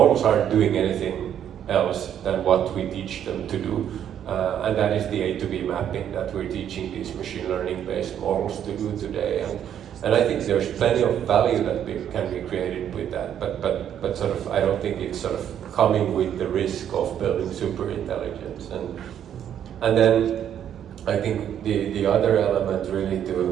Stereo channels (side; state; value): left; quieter; 9.7 dB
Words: aren't doing anything else than what we teach them to do. And that is the A to B mapping that we're teaching these machine learning based models to do today. And I think there's plenty of value that can be created with that, but sort of I don't think it's sort of coming with the risk of building super intelligence. And then I think the other element really